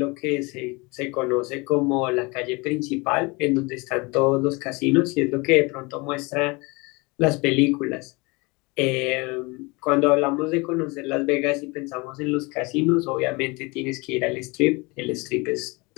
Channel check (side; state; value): right; quieter; 26.7 dB